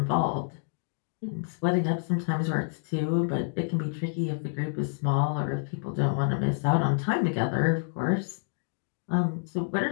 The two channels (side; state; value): right; silent; digital silence